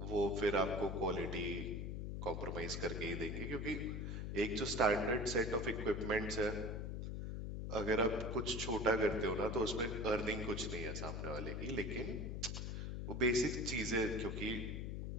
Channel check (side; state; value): left; noise; hum, 4 dB below the sound